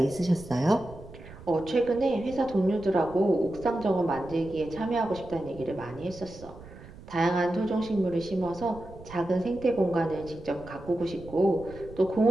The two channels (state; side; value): noise; right; rumble, 17 dB below the sound